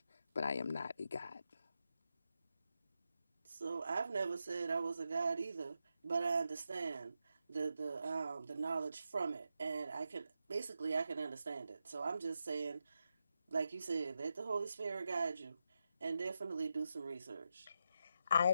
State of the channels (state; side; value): inverted; both; correlation -0.86